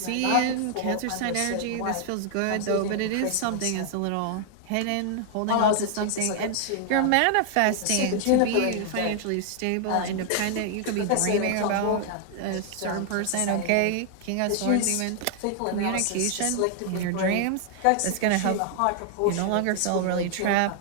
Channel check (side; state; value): both; different; correlation 0.00